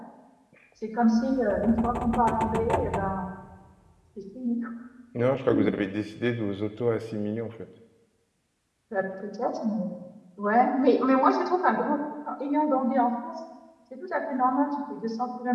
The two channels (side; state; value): both; identical; correlation 1.00